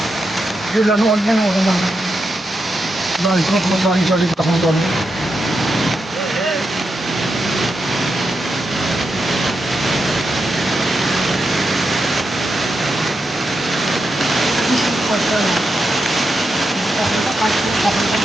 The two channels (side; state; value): both; normal; correlation 0.86